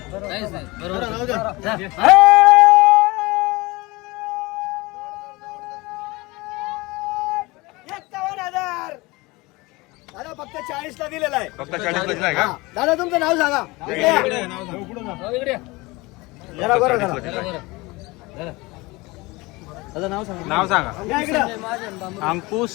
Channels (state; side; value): quieter; right; 23.1 dB